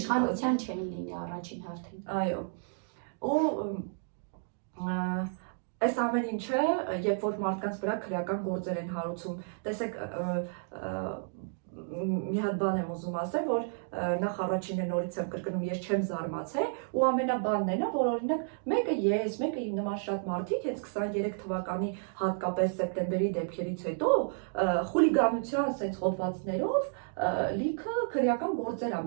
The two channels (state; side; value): silent; left; digital silence